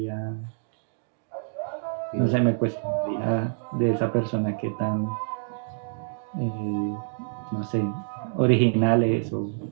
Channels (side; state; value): left; silent; digital silence